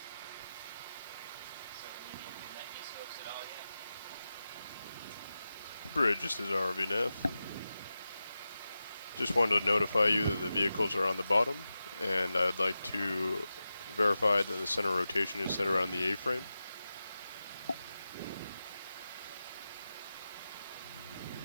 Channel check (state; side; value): inverted; both; correlation -0.92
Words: Bridge, this is RVNF. Just wanted to notify you that the vehicles are on the bottom, and I'd like to verify that the center rotation is set around the A-frame.